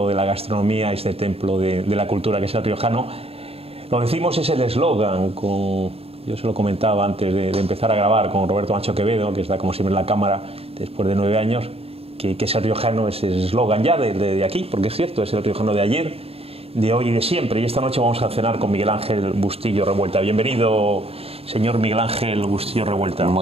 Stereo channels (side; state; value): left; late; 0.28 ms